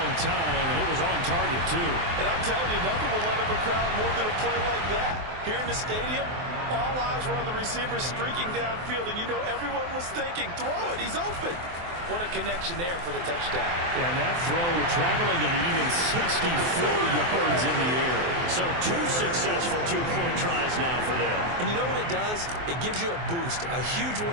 time, and it was on target, too. And I'm telling you, nothing will let up a crowd more than a play like that. Here in the stadium, all eyes were on the receiver streaking downfield, and you know everyone was thinking, throw it, he's open. What a connection there for the touchdown. Yeah, and that throw traveling an even 64 yards in the air. So 2 successful 2-point tries now for them. And you know what it does? It gives you a boost, a huge one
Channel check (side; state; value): left; late; 23 ms